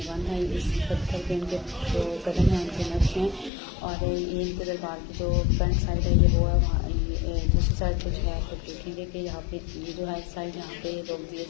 है, इस पत्थर पे इनके जो कदम हैं उनके नक्श हैं। और ये इनके दरबार की जो फ्रंट साइड है ये वो है, वहाँ दूसरी साइड पर जो है आप लोग देखेंगे कि यहाँ पे ये जो है साइड यहाँ पे लोग दिए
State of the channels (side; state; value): right; drops out; at 3.5 s